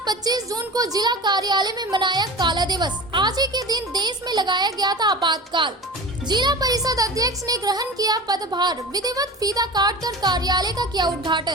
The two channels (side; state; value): both; normal; correlation 0.34